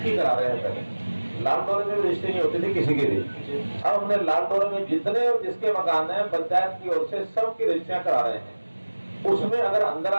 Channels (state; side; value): inverted; both; correlation -1.00